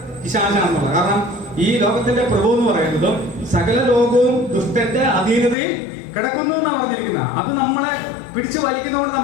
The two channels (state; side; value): drops out; right; at 5.6 s